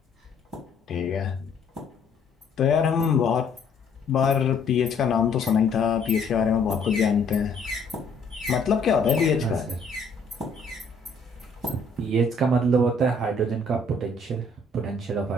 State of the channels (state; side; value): quieter; right; 3.2 dB